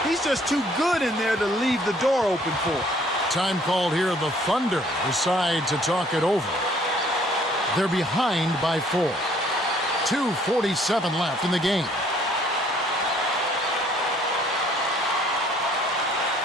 He's just too good in there to leave the door open for. Time called here. The Thunder decide to talk it over. They're behind by 4. 2:47 left in the game.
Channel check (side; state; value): both; normal; correlation 0.60